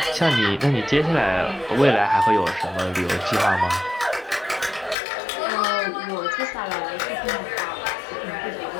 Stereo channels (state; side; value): drops out; right; at 5.0 s